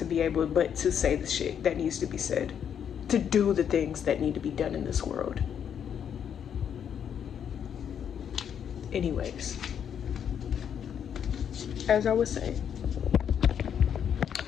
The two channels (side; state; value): right; quieter; 8.4 dB